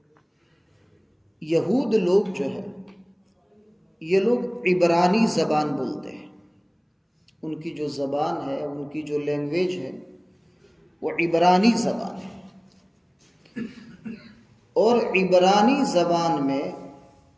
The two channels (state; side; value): identical; both; correlation 1.00